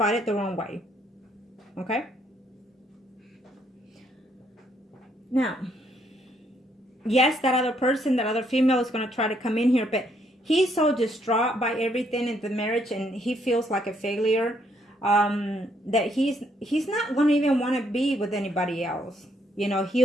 it the wrong way. Okay? Now, yes, that other person, that other female is going to try to come in here, but he's so distraught by everything in the marriage, and he feels like a failure, that he's not going to even want to be with anybody else. You know,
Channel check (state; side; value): normal; both; correlation 0.71